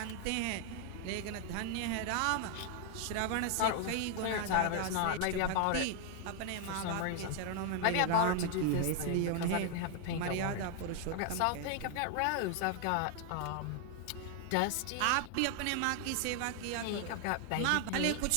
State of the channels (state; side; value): different; both; correlation 0.00